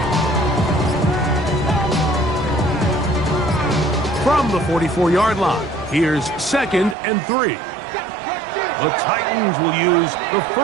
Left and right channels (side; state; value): left; drops out; at 7.0 s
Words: From the 44-yard line, here's 2nd and 3. The Titans will use the